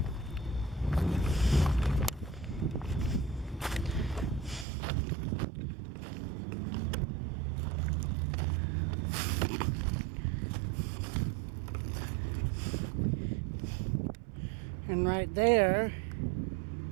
And right there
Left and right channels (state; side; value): drops out; left; at 4.7 s